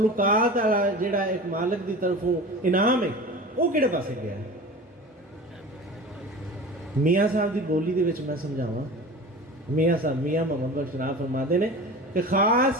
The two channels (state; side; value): normal; both; correlation 0.35